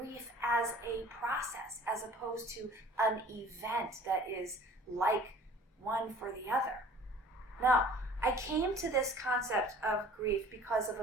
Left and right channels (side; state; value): both; normal; correlation 0.48